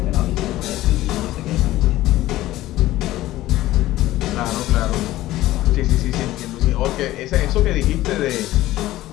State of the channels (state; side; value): quieter; right; 15.9 dB